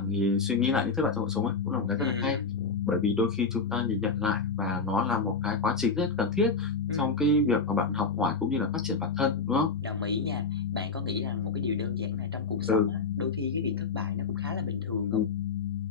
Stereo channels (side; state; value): right; quieter; 4.7 dB